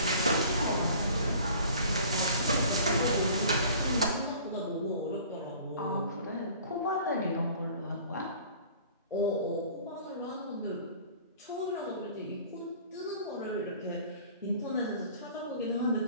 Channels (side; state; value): both; inverted; correlation -0.48